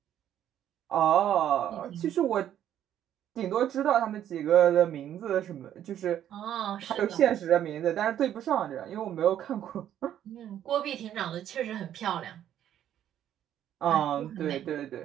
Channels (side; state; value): left; quieter; 10.8 dB